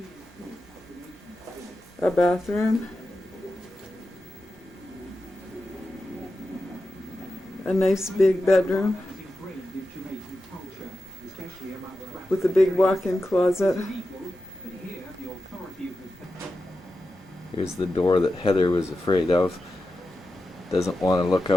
A bathroom. A nice big bedroom with a big walk-in closet. Here's the door that Heather was afraid of. Doesn't want to look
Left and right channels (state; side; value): normal; both; correlation 0.91